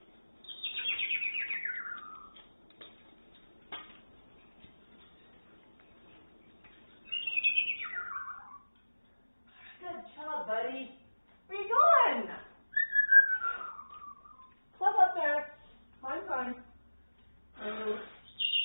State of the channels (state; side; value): inverted; both; correlation -1.00